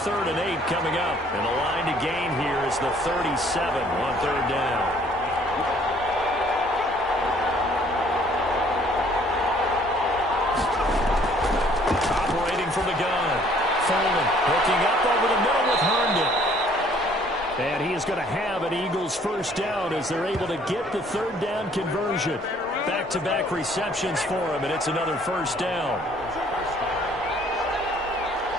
3rd and 8 coming up. And the line to gain here is the 37 on 3rd down. Operating from the gun. Foreman hooking up over the middle with Herndon. And he is going to have an Eagles 1st down as they're able to get the 3rd down conversion. Back-to-back receptions for him, and it's another 1st down.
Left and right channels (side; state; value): both; normal; correlation 0.59